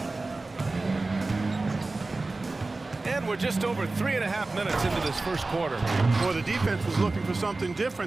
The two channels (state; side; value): quieter; left; 3.3 dB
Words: And we're just over 3.5 minutes into this first quarter. Well, the defense was looking for something